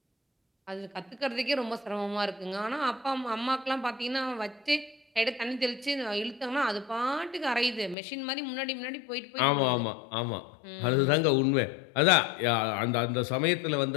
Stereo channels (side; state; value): right; drops out; at 8.0 s